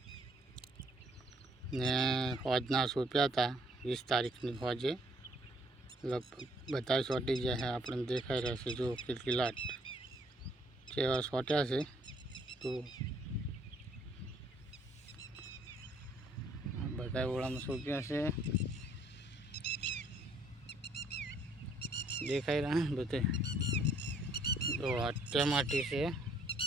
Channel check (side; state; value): both; normal; correlation 0.64